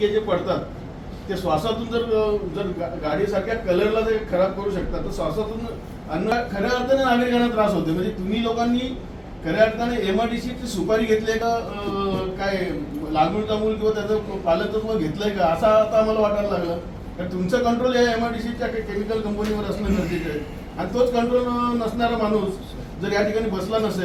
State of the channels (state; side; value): identical; both; correlation 1.00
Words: जे पडतात ते श्वासातून जर गाडीसारख्या कलरला ते खराब करू शकतात, तर श्वासातून खऱ्या अर्थाने नागरिकांना त्रास होते. म्हणजे तुम्ही लोकांनी खऱ्या अर्थाने MRDCची सुपारी घेतली का, काय लागूळ तामूळ किंवा त्याचं पालकत्व घेतलंय का, असं आता आम्हाला वाटायला लागलं. कारण तुमचं कंट्रोल या MRDCच्या केमिकल कंपनीवर असणं गरजेचं आहे. आणि तोच कंट्रोल नसणारा माणूस जर या ठिकाणी बसला